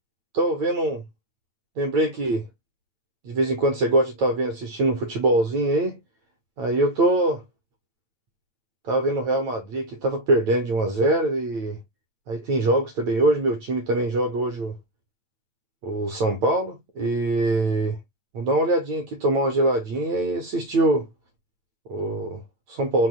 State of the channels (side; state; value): left; late; 9.0 ms